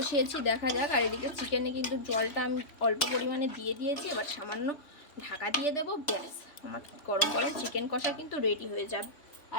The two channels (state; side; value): late; right; 3.2 ms